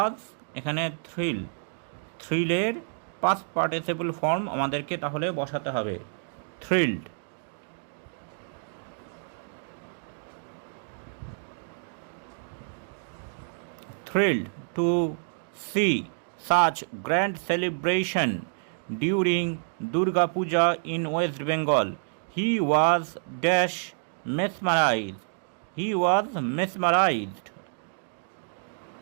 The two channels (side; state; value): left; silent; digital silence